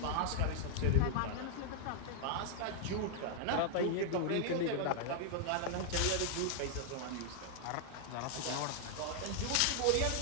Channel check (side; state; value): both; different; correlation 0.00